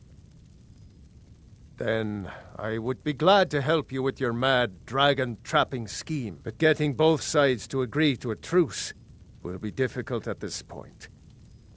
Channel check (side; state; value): both; identical; correlation 1.00